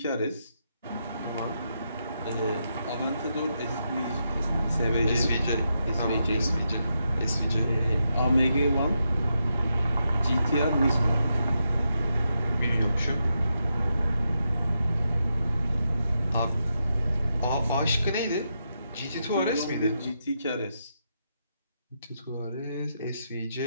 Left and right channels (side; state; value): both; inverted; correlation -0.84